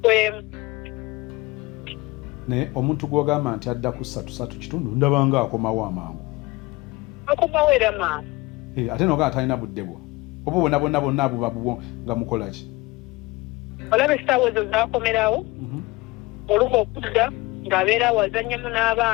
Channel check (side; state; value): right; quieter; 22.0 dB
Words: naye omuntu gw'ogamba nti adda ku 3 ndabanga akomawo amangu akomawo era maama ate noga atalina budde bwo oba bonna abuba bubwo nga mukola ki olaba essaawa ezo zaakomerawo olumu okudda ng'abeera awazannyamu